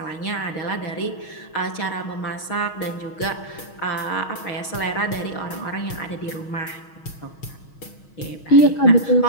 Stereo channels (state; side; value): late; right; 6.4 ms